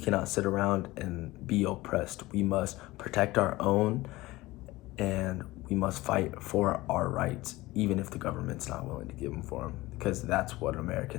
sit around and be oppressed. We must protect our own and we must fight for our rights, even if the government's not willing to give them for them, because that's what an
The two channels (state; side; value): quieter; right; 19.3 dB